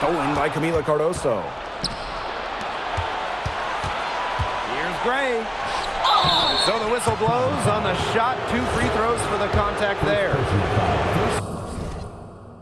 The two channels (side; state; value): both; identical; correlation 1.00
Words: by Camila Cardoso. Here's Gray. So the whistle blows on the shot. 2 free throws for the contact there.